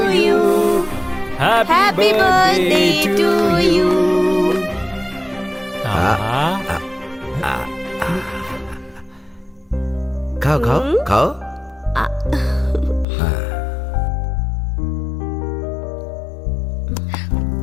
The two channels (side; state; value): right; drops out; at 13.1 s